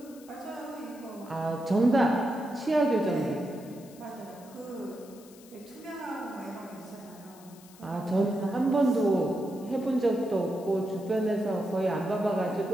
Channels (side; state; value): left; noise; hiss, 23 dB below the sound